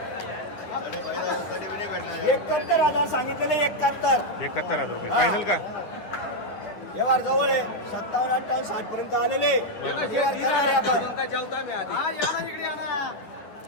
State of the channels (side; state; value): right; late; 9.5 ms